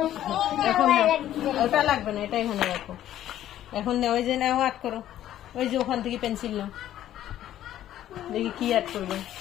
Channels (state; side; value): quieter; right; 12.3 dB